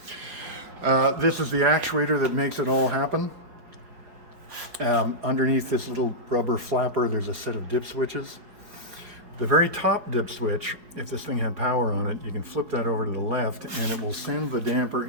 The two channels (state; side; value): late; left; 5.0 ms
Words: This is the actuator that makes it all happen. Underneath this little rubber flapper, there's a set of dip switches. The very top dip switch, if this thing had power on it, you can flip that over to the left and it will send the damper